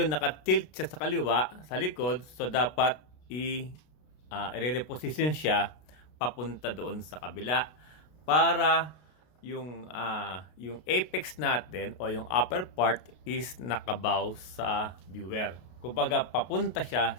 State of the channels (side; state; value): right; late; 33 ms